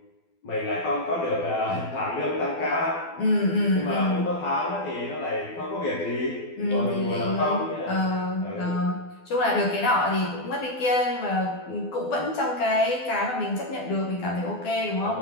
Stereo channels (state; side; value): late; right; 12 ms